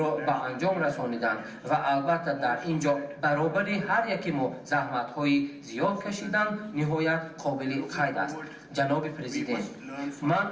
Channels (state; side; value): identical; both; correlation 1.00